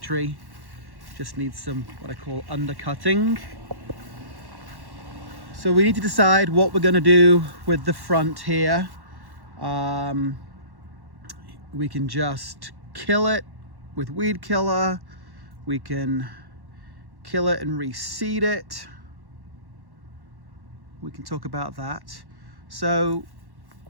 Just needs some, what I call, undercutting. So we need to decide what we're going to do with the front here. We can just kill it with weed killer. We can kill it and reseed it. We can talk about that. So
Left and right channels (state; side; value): late; left; 1.1 ms